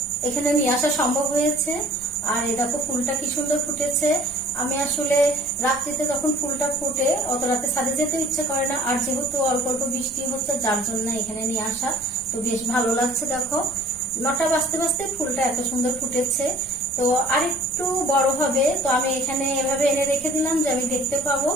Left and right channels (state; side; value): noise; right; rumble, 21 dB below the sound